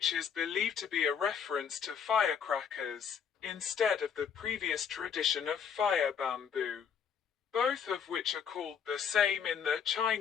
is believed to be a reference to firecrackers, instead of the previous tradition of fire bamboo, both of which are called the same in the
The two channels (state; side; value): quieter; right; 7.4 dB